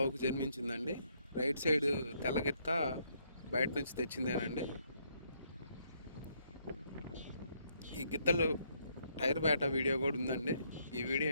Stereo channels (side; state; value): both; inverted; correlation -0.72